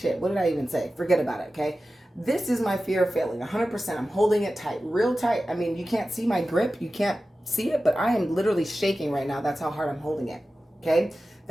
what did I even say? Forget about it, okay? This is my fear of failing, 100%. I'm holding it tight, real tight. I mean, you can't see my grip. You can't see it, but I am literally shaking right now. That's how hard I'm holding it, okay?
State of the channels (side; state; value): both; normal; correlation 0.94